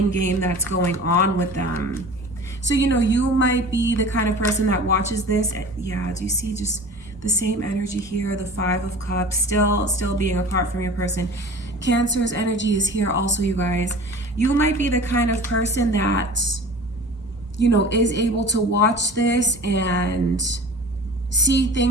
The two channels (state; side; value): normal; both; correlation 0.38